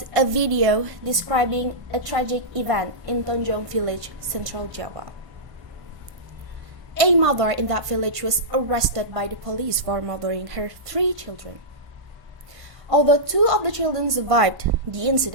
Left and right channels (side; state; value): left; late; 1.5 ms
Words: a video describing a tragic event in Tonjong village, Central Java. A mother in that village was arrested by the police for murdering her 3 children. Although 2 of the children survived the